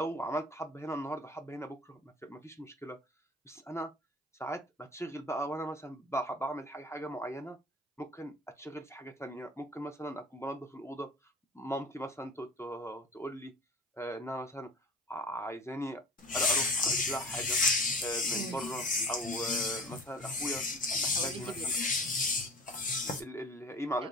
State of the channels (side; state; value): both; normal; correlation 0.39